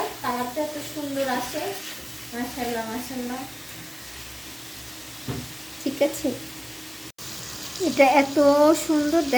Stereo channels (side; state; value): both; identical; correlation 1.00